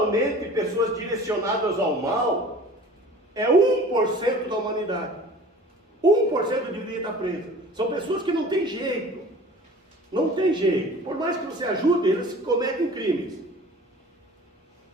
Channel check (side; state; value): both; normal; correlation 0.44